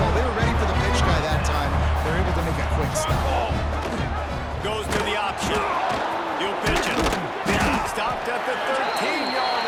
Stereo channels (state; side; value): identical; both; correlation 1.00